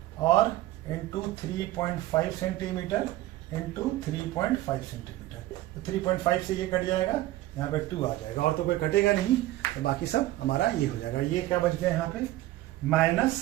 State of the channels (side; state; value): left; quieter; 16.1 dB